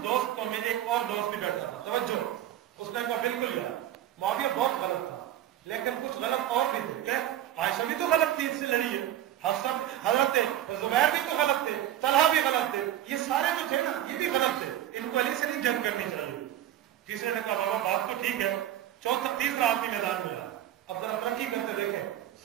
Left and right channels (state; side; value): quieter; left; 12.5 dB